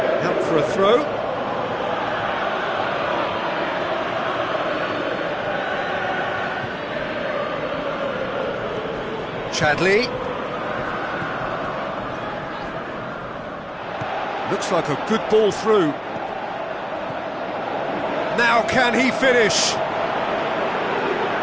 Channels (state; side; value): identical; both; correlation 1.00